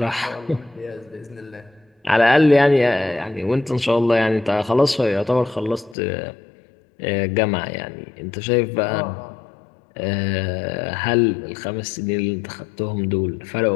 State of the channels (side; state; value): right; drops out; at 6.0 s